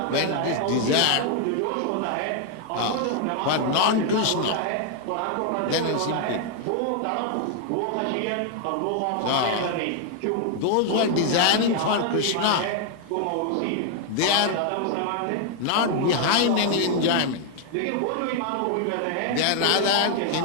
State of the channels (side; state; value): both; different; correlation 0.00